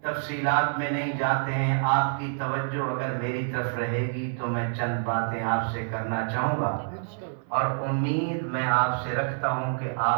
تفصیلات میں نہیں جاتے ہیں، آپ کی توجہ اگر میری طرف رہے گی تو میں چند باتیں آپ سے کرنا چاہوں گا، اور امید میں آپ سے رکھتا ہوں کہ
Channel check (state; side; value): silent; left; 60 dB below the other